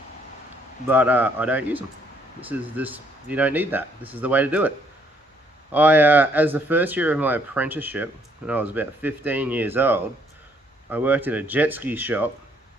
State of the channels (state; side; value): normal; both; correlation 0.67